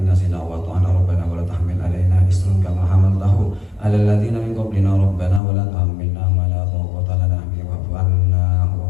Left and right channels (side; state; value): right; drops out; at 5.4 s